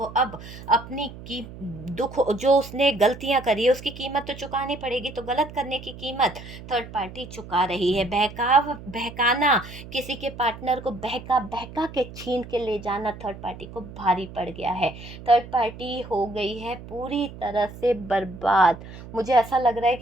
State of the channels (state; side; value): noise; right; hum, 14 dB below the sound